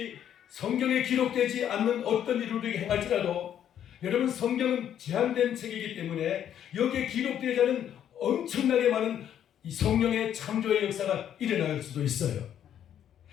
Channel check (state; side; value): quieter; right; 10.0 dB